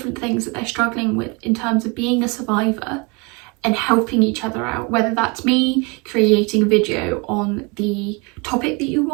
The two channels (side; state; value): left; quieter; 29.6 dB